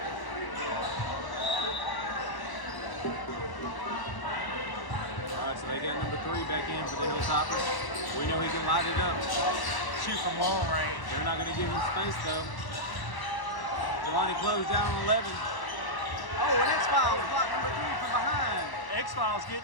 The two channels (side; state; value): right; late; 1.0 ms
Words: So they got number 3 back in for the Hilltoppers. We know he can light it up. Shoot from long range. They're not going to give him space though. Jelani closed down on 11. Oh, and X-Files blocked number 3 from behind. X-Files getting